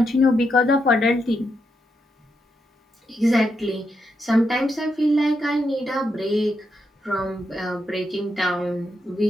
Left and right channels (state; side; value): normal; both; correlation 0.82